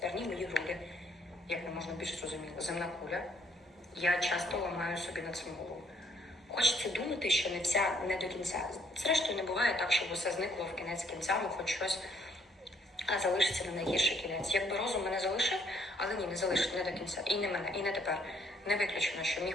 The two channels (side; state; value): both; normal; correlation 0.67